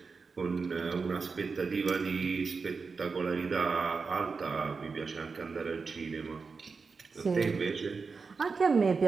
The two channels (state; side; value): quieter; left; 4.8 dB